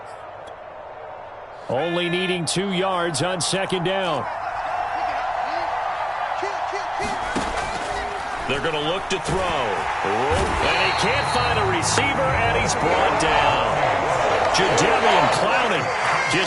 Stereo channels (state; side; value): identical; both; correlation 1.00